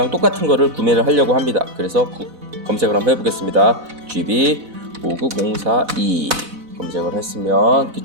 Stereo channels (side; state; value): left; late; 4.0 ms